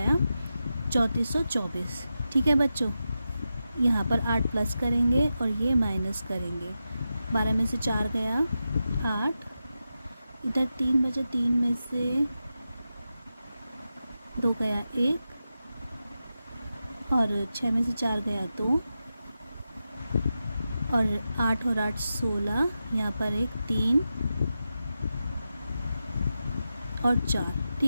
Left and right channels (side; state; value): both; inverted; correlation -0.90